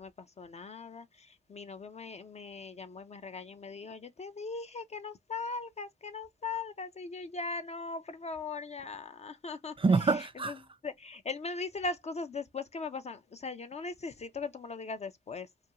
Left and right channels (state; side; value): normal; both; correlation 0.46